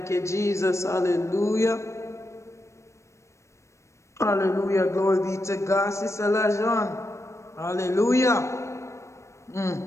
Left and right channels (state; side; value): late; right; 0.14 ms